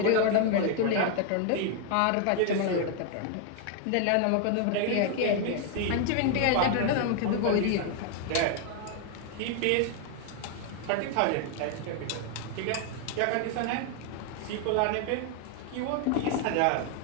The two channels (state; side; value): different; both; correlation 0.00